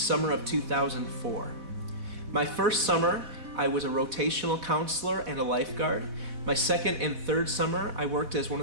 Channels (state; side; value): late; left; 4.1 ms